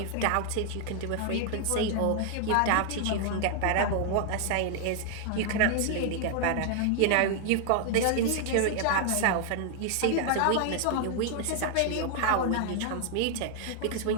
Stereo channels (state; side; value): different; both; correlation 0.00